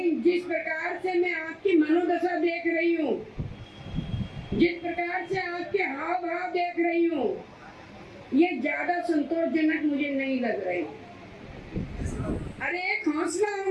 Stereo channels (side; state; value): both; identical; correlation 1.00